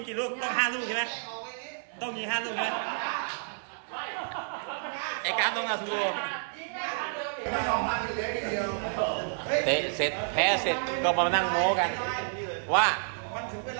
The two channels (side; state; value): left; silent; digital silence